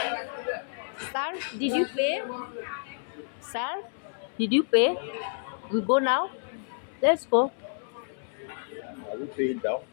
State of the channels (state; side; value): silent; right; 58 dB below the other